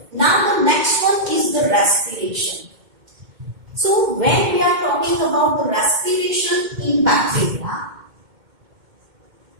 Now the next one is the respiration. So when we are talking about the respiration in bacteria,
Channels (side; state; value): left; late; 2.1 ms